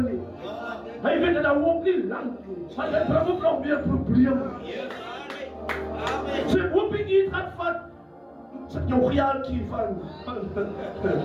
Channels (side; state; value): both; identical; correlation 1.00